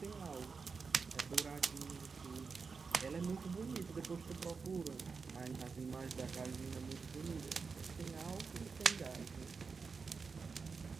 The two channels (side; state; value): left; quieter; 5.0 dB